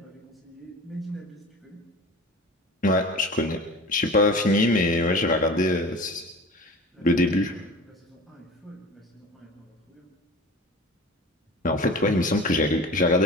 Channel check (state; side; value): normal; both; correlation 0.37